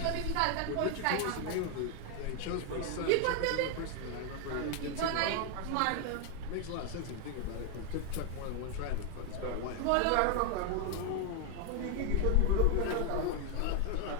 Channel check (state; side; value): different; both; correlation 0.01